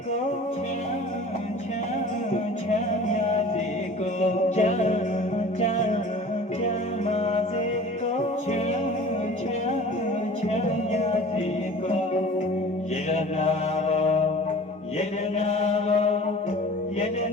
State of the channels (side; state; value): both; normal; correlation 0.43